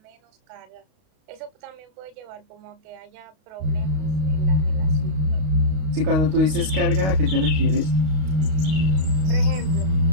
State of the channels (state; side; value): late; left; 32 ms